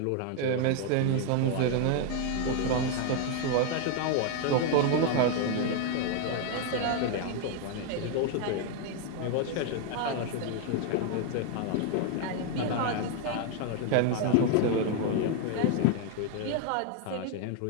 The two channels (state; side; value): different; both; correlation 0.00